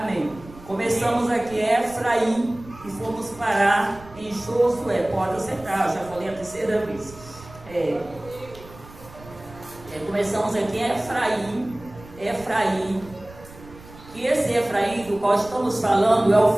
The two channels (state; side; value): noise; right; rumble, 19 dB below the sound